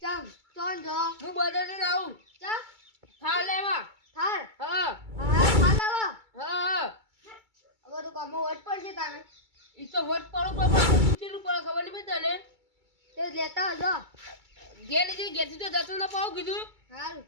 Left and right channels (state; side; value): late; left; 2.3 ms